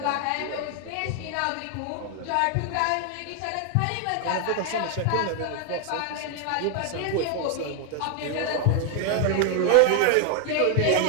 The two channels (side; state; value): both; different; correlation 0.00